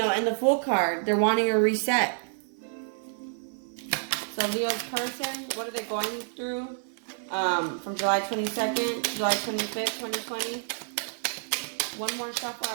and the Fool card, they're wanting a reset. So Leo's person, what are they going through? From July 22nd to July 25th, 2020. One more shuffle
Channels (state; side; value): silent; left; 59 dB below the other